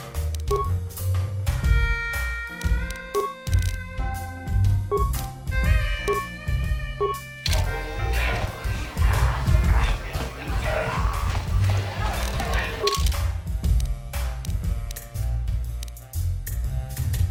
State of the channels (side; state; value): both; identical; correlation 1.00